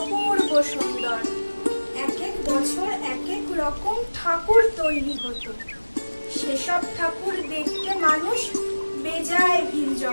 সুন্দর। এক এক বছর এক এক রকম ঠাকুর তৈরি হতো, সেসব ঠাকুর দেখতে মানুষ বেজায় ভিড়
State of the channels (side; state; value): both; inverted; correlation -1.00